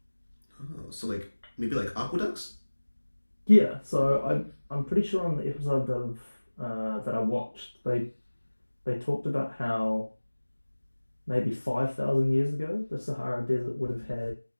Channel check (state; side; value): inverted; both; correlation -1.00